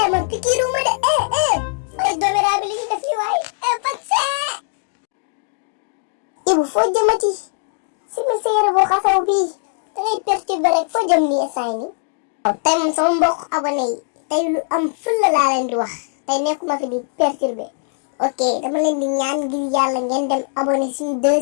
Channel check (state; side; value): silent; right; digital silence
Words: man piqûre wu ma de ay doméra bi li ñu def yi waay vaccin. Ibu foo jëmati si mi sa yére boo xasaw bii da ngay perturbé rek foo jëm nii instant nii. waaw tey moom sama mbokk abonné yi tey lu am fulla laa leen di wax tey nekkuma fi di perturber ok dama leen di ñaan ngir yàlla ngeen dem abonné suñu